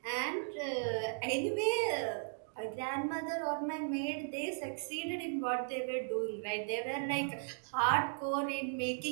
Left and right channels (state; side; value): silent; left; digital silence